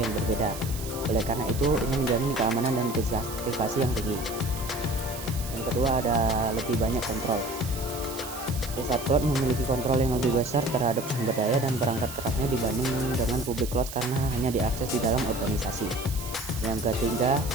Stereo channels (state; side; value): noise; right; hiss, 11 dB below the sound